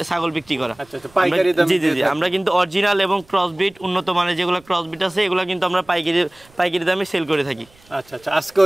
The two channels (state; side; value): noise; right; rumble, 29 dB below the sound